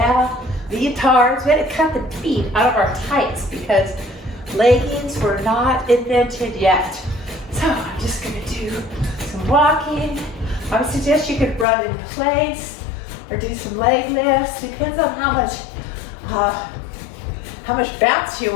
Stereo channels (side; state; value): right; drops out; at 11.7 s